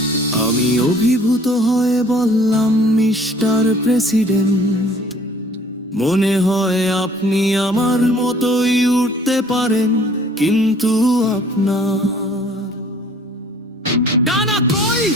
আমি অভিভূত হয়ে বললাম, মিস্টার প্রেসিডেন্ট, মনে হয় আপনি আমার মতোই উঠতে পারেন, কিন্তু আপনার ডানা কই?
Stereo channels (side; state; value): both; normal; correlation 0.54